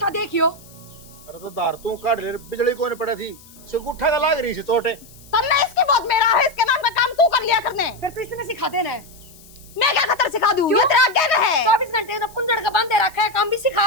देखियो। अरे तो दार तू काट ले बिजली कोने पड़ा थी से गुट्ठा का लाग रही से चोटे तन्ने इसकी बहुत मेरा है इसके नाम का काम तू कर लिया करने फिर तो इसने सिखा देना है मैं क्या खतर सिखा दूं ये तेरा आगे में है 24 घंटे तो पुंजड़ का बांधे रखा है काम भी सिखा।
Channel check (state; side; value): noise; left; hiss, 23 dB below the sound